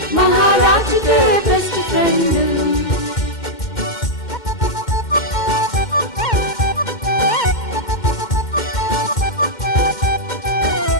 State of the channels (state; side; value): late; right; 2.1 ms